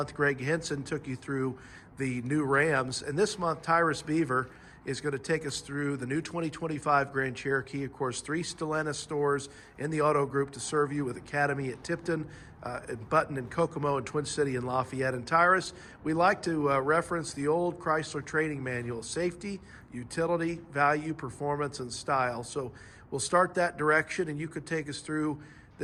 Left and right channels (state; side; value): identical; both; correlation 1.00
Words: Greg Henson took you through the new Rams, and this month, Tyrus Bever is going to take us through the new 2025 Grand Cherokee. Of course, 3 Stellantis stores in the auto group to serve you, with Academy at Tipton, and Button and Kokomo, and Twin City and Lafayette. And Tyrus, we like to reference the old Chrysler training manual: safety, utility, value, performance, and style. So we'll start that direction, and you could take us through